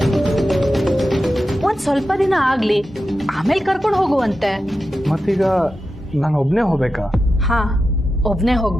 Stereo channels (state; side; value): normal; both; correlation 0.91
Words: ಒಂದ್ ಸ್ವಲ್ಪ ದಿನ ಆಗ್ಲಿ, ಆಮೇಲೆ ಕರ್ಕೊಂಡು ಹೋಗುವಂತೆ. ಮತ್ತೀಗ ನಾನು ಒಬ್ನೇ ಹೋಗ್ಬೇಕಾ? ಹಾ, ಒಬ್ನೇ